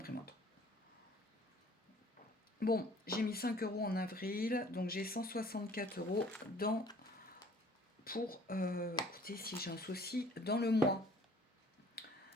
Bon, j'ai mis 5 euros en avril, donc j'ai 164 euros pour, écoutez, si j'ai un souci, dans le mois.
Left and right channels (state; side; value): normal; both; correlation 0.54